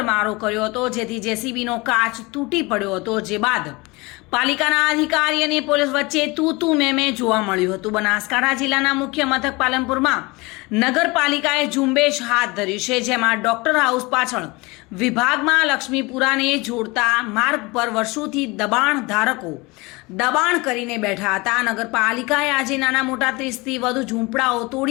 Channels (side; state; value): right; quieter; 24.5 dB